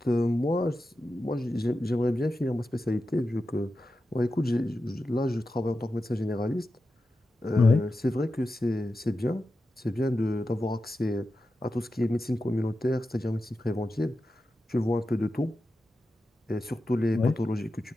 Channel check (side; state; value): both; normal; correlation 0.91